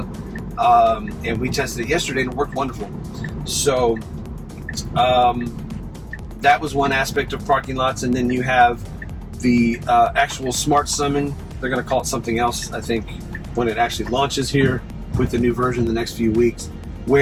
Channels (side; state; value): both; identical; correlation 1.00